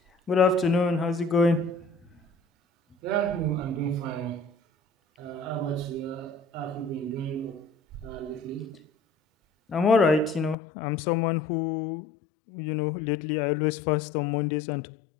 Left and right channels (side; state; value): right; drops out; at 10.6 s